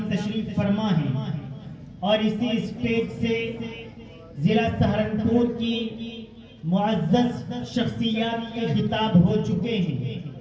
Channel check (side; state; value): both; identical; correlation 1.00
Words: تشریف فرما ہیں اور اسی اسٹیج سے ضلع سہارنپور کی معزز شخصیات کے خطاب ہو چکے ہیں۔